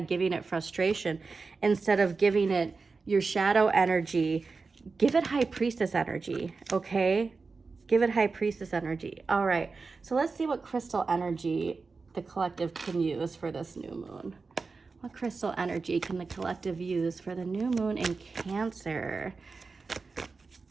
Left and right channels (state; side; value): quieter; left; 4.3 dB